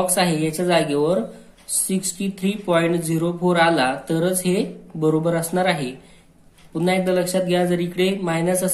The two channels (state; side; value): identical; both; correlation 1.00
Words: आहे याच्या जागेवर 63.04 आला तरच हे बरोबर असणार आहे. पुन्हा एकदा लक्षात घ्या, जर इकडे मायनस